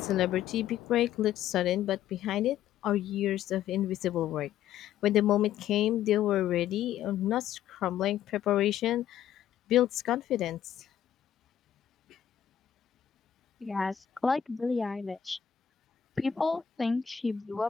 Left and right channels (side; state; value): right; quieter; 9.9 dB